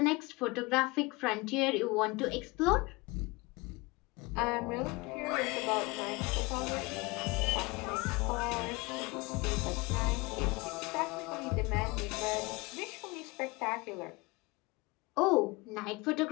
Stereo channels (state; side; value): quieter; right; 24.6 dB